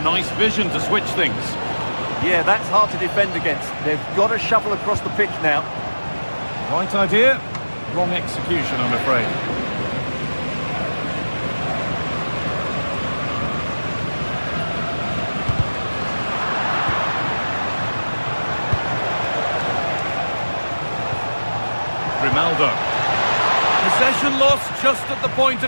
nice vision to switch things. Yeah, that's hard to defend against. They've got to shuffle across the pitch now. Right idea, wrong execution, I'm afraid. Grimaldo. Possession lost just at the point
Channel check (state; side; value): inverted; both; correlation -1.00